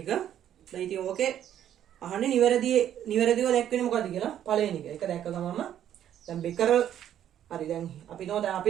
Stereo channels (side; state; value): left; quieter; 10.6 dB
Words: දැන් ඉතින් ඕකේ අහන්නේ නිවැරදිව දැක්වෙන්නේ මොකද්ද කියලා පළවෙනි එක. ඒක දැක්ක ගමන්ම දැන් බෙකරල් හරි දැන් අපි